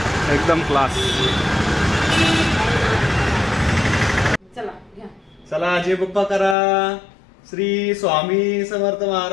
एकदम क्लास. चला जय बाप्पा करा. श्री स्वामी समर्थ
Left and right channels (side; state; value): right; drops out; at 6.6 s